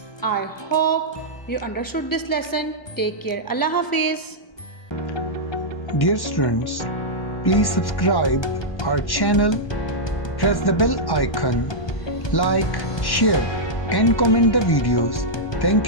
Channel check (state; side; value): late; right; 1.1 ms